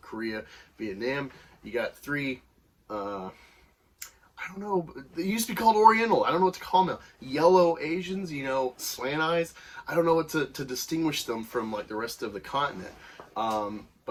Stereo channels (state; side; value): identical; both; correlation 1.00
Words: Korea, Vietnam. You got three, I don't know, they used to be called Oriental. I don't know what to call them now. Yellow Asians, slant eyes. I don't know what to distinguish them from, like, the rest of the continent.